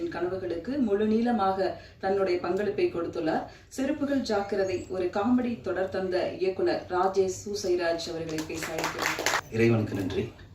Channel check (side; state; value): both; identical; correlation 1.00